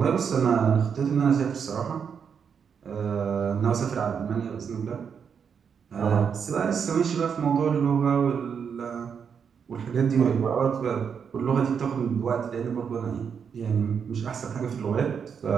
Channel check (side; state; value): left; quieter; 6.9 dB